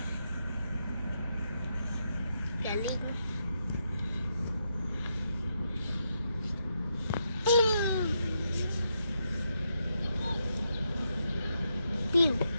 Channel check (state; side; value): inverted; both; correlation -0.81